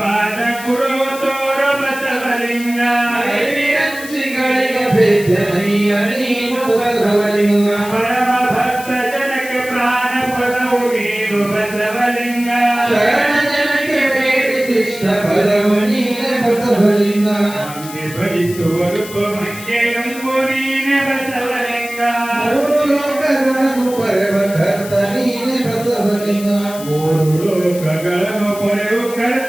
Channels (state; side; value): noise; left; hiss, 14 dB below the sound